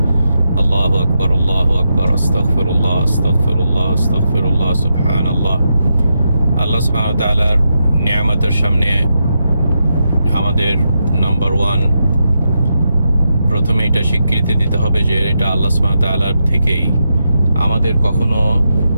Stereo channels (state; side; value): inverted; both; correlation -0.85